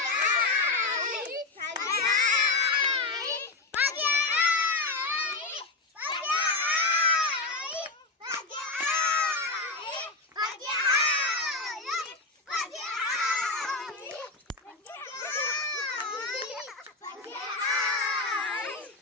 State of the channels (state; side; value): quieter; right; 3.5 dB